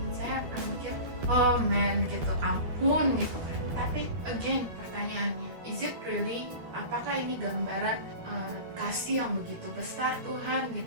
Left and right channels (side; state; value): left; late; 12 ms